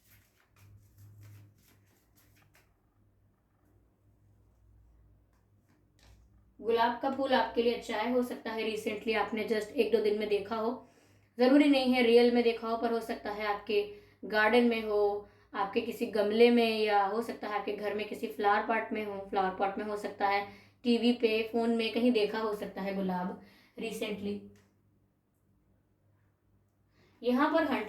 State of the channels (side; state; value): both; identical; correlation 1.00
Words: गुलाब का फूल आपके लिए अच्छा है। हो सकता है रिसेंटली आपने जस्ट 1-2 दिन में देखा हो, जरूरी नहीं है रियल में देखा हो, पर हो सकता है आपके गार्डन में हो, आपके किसी गमले में, या हो सकता है आपके घर में किसी फ्लावर पॉट में हो सकता है, टीवी पे, फोन में कहीं देखा हो सकता है गुलाब रिसेंटली। यहाँ पर